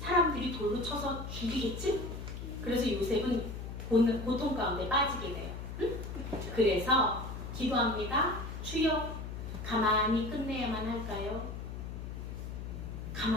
돌로 쳐서 죽이겠지? 그래서 요셉은 고통 가운데 빠지게 돼요. 응? 그래서 기도합니다. 주여 가만히 끝내야만 할까요?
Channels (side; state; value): left; noise; hum, 7 dB below the sound